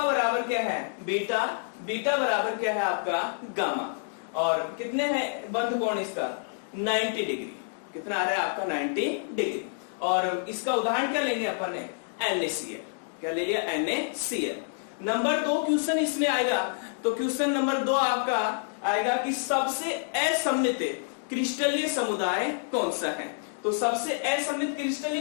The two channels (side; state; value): right; silent; digital silence